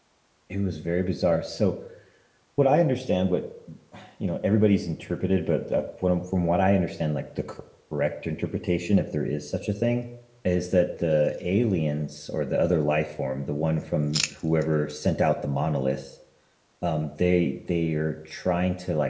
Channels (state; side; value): identical; both; correlation 1.00